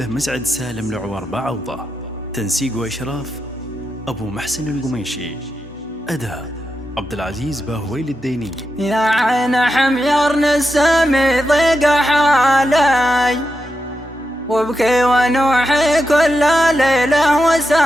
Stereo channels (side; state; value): both; normal; correlation 0.87